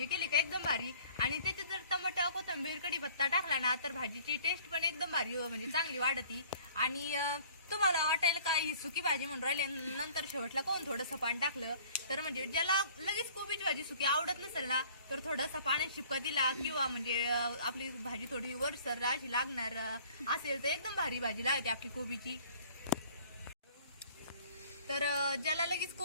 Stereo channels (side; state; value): both; inverted; correlation -0.52